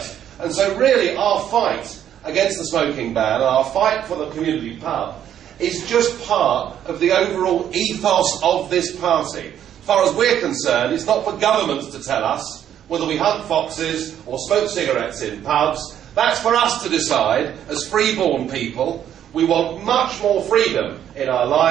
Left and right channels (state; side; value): quieter; left; 10.2 dB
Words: And so really our fight against the smoking ban and our fight for the community pub is just part of the overall ethos of this party. As far as we're concerned, it's not for governments to tell us whether we hunt foxes or smoke cigarettes in pubs. That's for us to decide as freeborn people. We want much more freedom in our